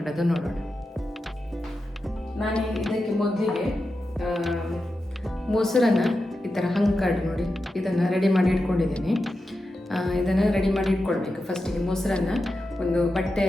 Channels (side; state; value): both; normal; correlation 0.90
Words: ನೋಡೋಣ. ನಾನು ಇದಕ್ಕೆ ಮೊದಲಿಗೆ ಮೊಸರನ್ನು ಈ ಥರ ಹಂಕಾಡು ನೋಡಿ, ಇದನ್ನು ರೆಡಿ ಮಾಡಿ ಇಟ್ಕೊಂಡಿದ್ದೀನಿ. ಇದನ್ನು ರೆಡಿ ಮಾಡಿ ಇಟ್ಕೊಳ್ಬೇಕು. ಫಸ್ಟಿಗೆ ಮೊಸರನ್ನು ಒಂದು